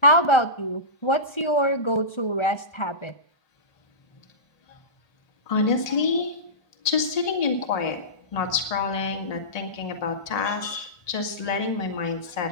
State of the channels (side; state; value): right; late; 1.8 ms